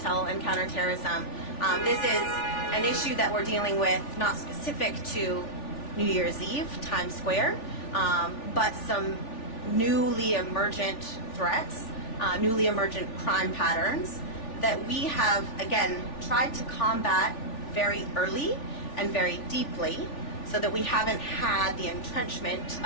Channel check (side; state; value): right; late; 3.4 ms